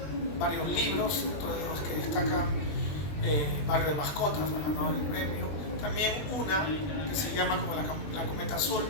varios libros, dentro de los que destaca Barrio de Mascotas, ha ganado el premio. También una que se llama como la Cometa Azul,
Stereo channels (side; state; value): right; late; 21 ms